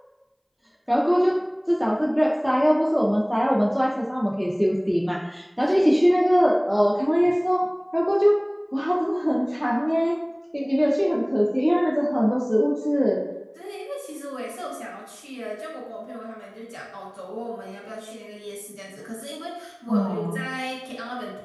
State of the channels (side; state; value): both; identical; correlation 1.00